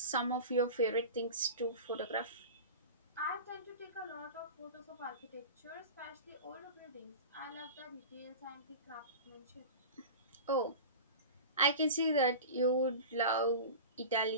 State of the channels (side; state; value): both; inverted; correlation -0.32